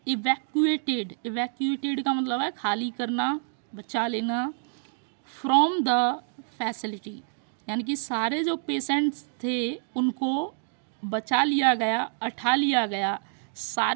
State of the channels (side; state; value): left; silent; digital silence